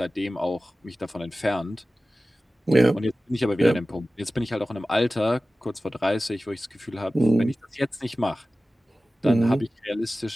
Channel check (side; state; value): both; normal; correlation 0.96